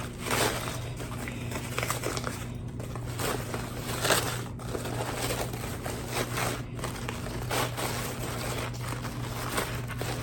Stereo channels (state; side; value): identical; both; correlation 1.00